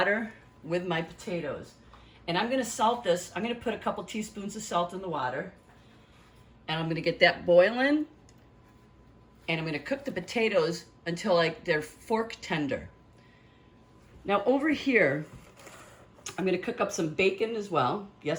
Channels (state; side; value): identical; both; correlation 1.00